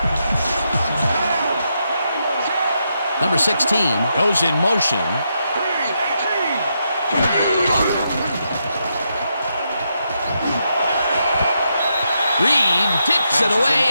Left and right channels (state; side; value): inverted; both; correlation -0.82